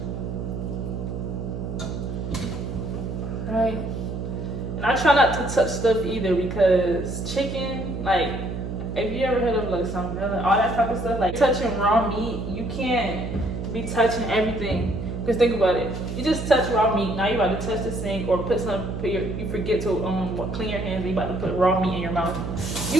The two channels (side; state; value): right; noise; hum, 5 dB below the sound